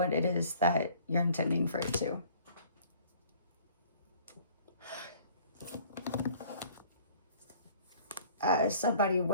it is that you're intending for it to. Somebody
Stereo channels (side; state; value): both; inverted; correlation -0.53